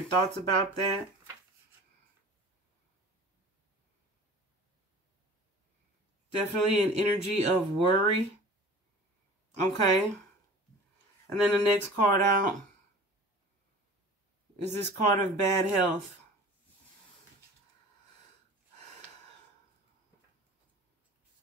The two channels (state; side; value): normal; both; correlation 0.42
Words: thoughts about that. Definitely an energy of worry. Okay. And then the next card out is this card of bad health.